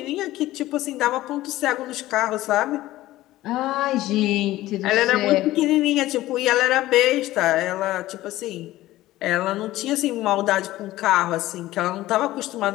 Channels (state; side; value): quieter; right; 16.1 dB